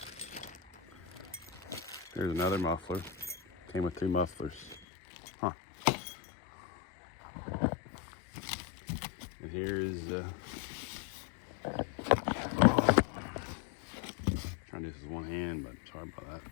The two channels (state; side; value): drops out; right; at 4.8 s